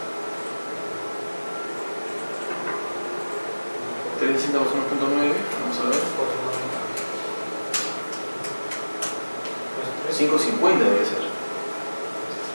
360 más 1.9, vamos a ver, 550 debe ser.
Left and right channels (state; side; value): inverted; both; correlation -1.00